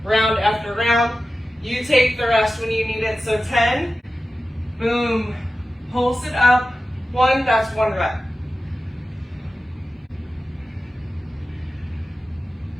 round after round. You take the rest when you need it. So 10, boom, pulse it up. 1, that's 1 rep.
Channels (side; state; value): both; normal; correlation 0.94